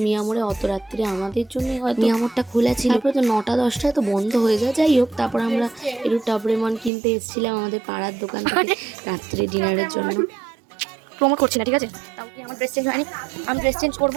মিয়ামোড়ে। অত রাত্রে আমাদের জন্য হয়তো মিয়ামোড়টা খোলা ছিল, তারপরে তো 9টা-10টায় তো বন্ধ হয়ে যায়। যাই হোক, তারপর আমরা একটু টাবরেমন কিনতে এসেছিলাম আমাদের পাড়ার দোকান থেকে রাত্রে ডিনারের জন্য। প্রমোট করছি না, ঠিক আছে? তাও কি আমার ড্রেস চেঞ্জ হয়নি? আমি ড্রেস চেঞ্জ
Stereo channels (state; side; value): drops out; left; at 6.9 s